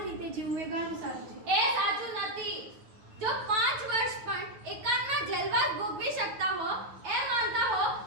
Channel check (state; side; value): late; left; 9.2 ms